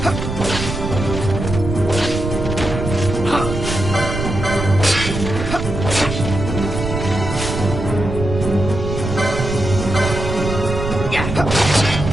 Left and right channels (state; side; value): noise; right; rumble, 4 dB below the sound